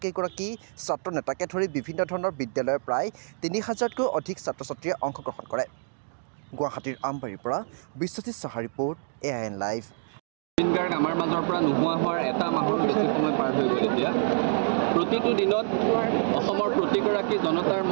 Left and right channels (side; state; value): left; silent; digital silence